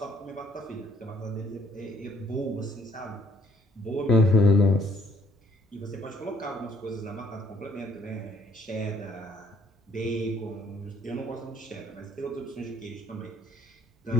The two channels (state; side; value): normal; both; correlation 0.63